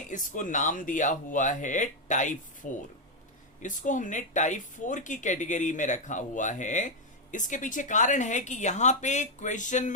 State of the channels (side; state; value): both; normal; correlation 0.01